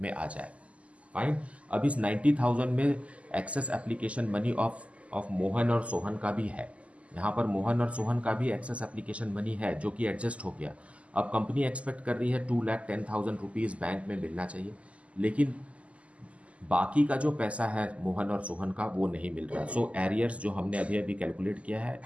में आ जाए. फाइन. अब इस 90,000 में excess application money of Mohan और सोहन का भी है. यहाँ पर मोहन और सोहन का भी एक्सेस एप्लीकेशन मनी है जो कि एडजस्ट हो गया. अब कंपनी एक्सपेक्ट कर रही है 2,10,000 रुपीज़ बैंक में मिलना चाहिए, लेकिन बाकी का जो पैसा है मोहन और सोहन का वो नहीं मिल रहा. सो एरियर्स जो हमने अभी अभी कैलकुलेट किया है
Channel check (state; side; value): late; left; 0.064 ms